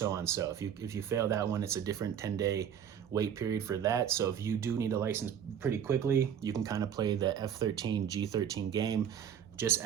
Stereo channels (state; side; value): quieter; left; 8.7 dB